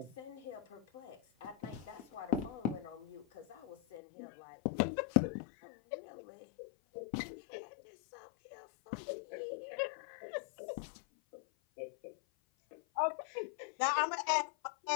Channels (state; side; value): drops out; right; at 4.0 s